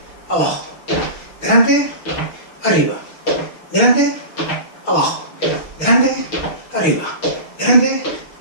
abajo. Delante, arriba. Delante, abajo. Delante, arriba. Delante,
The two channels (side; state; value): right; late; 6.4 ms